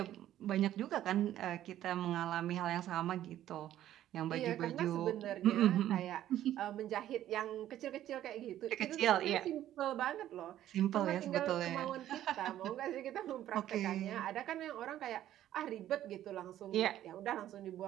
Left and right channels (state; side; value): quieter; left; 12.4 dB